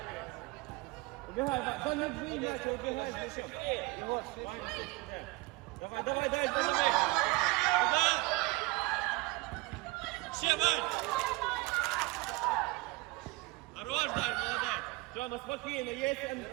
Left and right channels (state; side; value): quieter; left; 23.2 dB